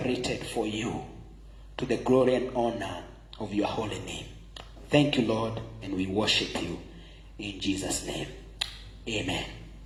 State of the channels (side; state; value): both; identical; correlation 1.00